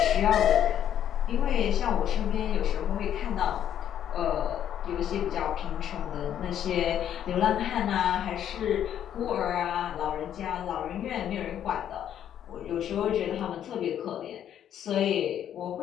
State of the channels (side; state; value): right; quieter; 10.1 dB